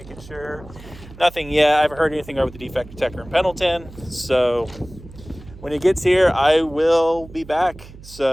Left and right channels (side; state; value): right; noise; hum, 18 dB below the sound